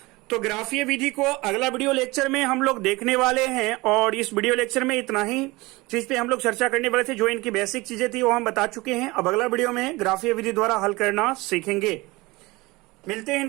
तो ग्राफीय विधि को अगला वीडियो लेक्चर में हम लोग देखने वाले हैं, और इस वीडियो लेक्चर में इतना ही चीज पे हम लोग चर्चा करने वाले थे। जो इनकी बेसिक चीजें थी वो हम बता चुके हैं। अब अगला वीडियो में ग्राफीय विधि द्वारा हल करना सीखेंगे। मिलते हैं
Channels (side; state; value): left; quieter; 22.3 dB